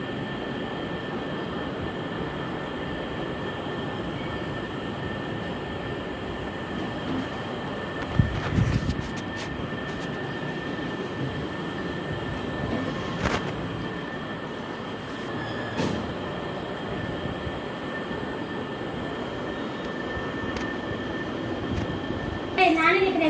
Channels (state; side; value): identical; both; correlation 1.00